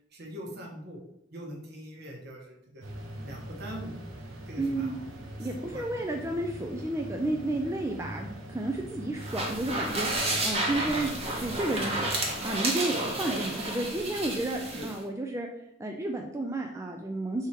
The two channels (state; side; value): normal; both; correlation 0.51